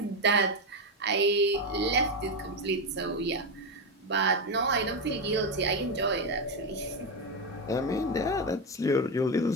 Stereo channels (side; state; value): both; normal; correlation 0.10